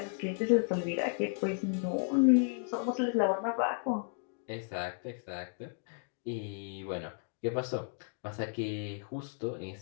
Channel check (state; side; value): silent; right; 55 dB below the other